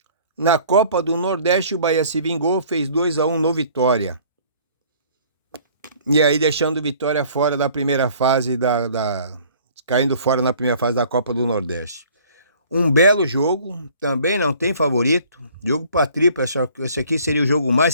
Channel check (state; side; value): inverted; both; correlation -0.54